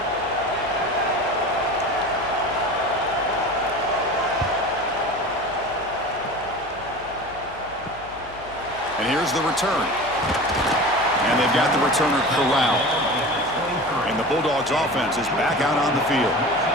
And here's the return. And they've got the returner corralled. And the Bulldogs offense is back out on the field.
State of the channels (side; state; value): left; noise; hum, 20 dB below the sound